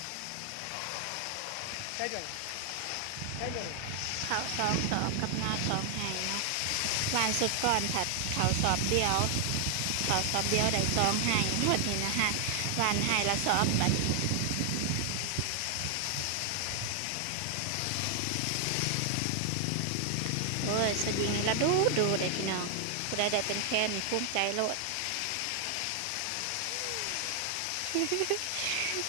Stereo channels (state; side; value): different; both; correlation 0.00